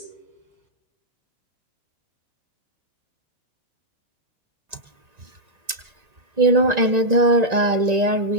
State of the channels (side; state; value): left; late; 1.9 ms